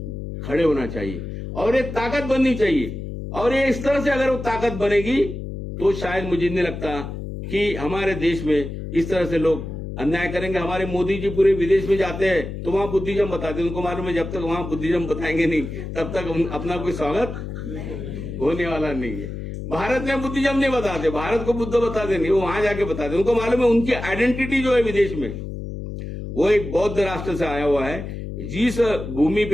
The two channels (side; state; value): left; noise; hum, 8 dB below the sound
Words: खड़े होना चाहिए और ये ताकत बननी चाहिए। और ये इस तरह से अगर वो ताकत बनेगी तो शायद मुझे नहीं लगता कि हमारे देश में इस तरह से लोग अन्याय करेंगे। हमारे मोदी जी पूरे विदेश में जाते हैं तो वहां बुद्धिज्म बताते हैं, उनको मालूम है जब तक वहां बुद्धिज्म बताएंगे नहीं तब तक अपना कोई स्वागत होने वाला नहीं है। भारत में बुद्धिज्म नहीं बताते, भारत को बुद्ध बताते नहीं, वो वहां जाके बताते, उनको मालूम है उनकी आइडेंटिटी जो है विदेश में वो एक बौद्ध राष्ट्र से आया हुआ है। जिस भूमि